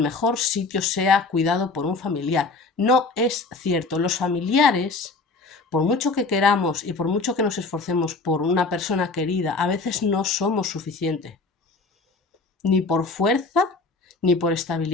mejor sitio sea cuidado por un familiar. No es cierto. Los familiares, por mucho que queramos y por mucho que nos esforcemos por una persona querida, a veces no somos suficientes. Ni por fuerza, ni por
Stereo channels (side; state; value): right; quieter; 3.8 dB